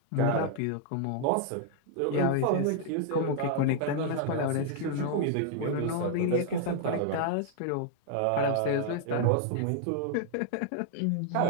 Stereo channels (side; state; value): both; different; correlation -0.01